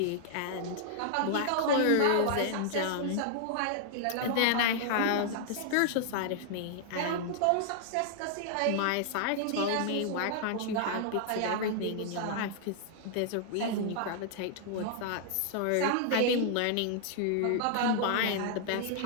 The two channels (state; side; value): different; both; correlation -0.01